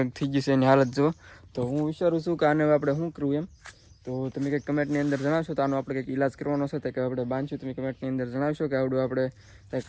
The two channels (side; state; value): both; identical; correlation 1.00